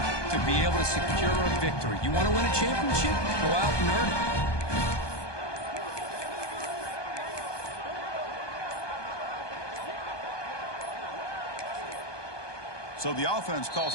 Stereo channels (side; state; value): right; late; 1.2 ms